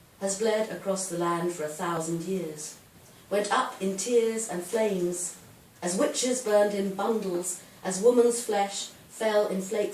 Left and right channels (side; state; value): both; identical; correlation 1.00